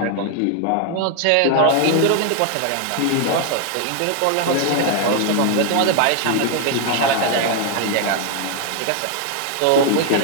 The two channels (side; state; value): both; different; correlation 0.00